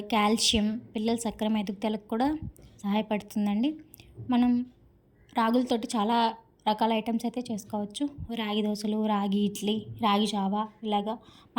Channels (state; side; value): identical; both; correlation 1.00